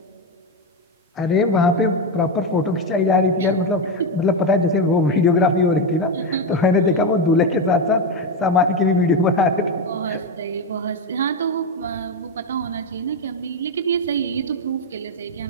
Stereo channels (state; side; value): normal; both; correlation 0.10